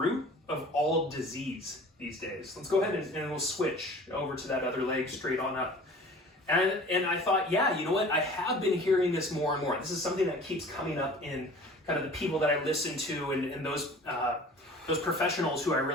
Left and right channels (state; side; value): normal; both; correlation 0.44